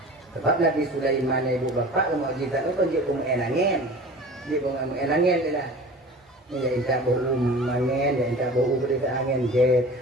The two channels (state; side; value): normal; both; correlation 0.40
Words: Sebab Nabi Sulaiman ibu bapa mukjizat itu dia pun angin. Dia pun angin dia lah. Ya inta bau angin, ya inta bau berita angin jet,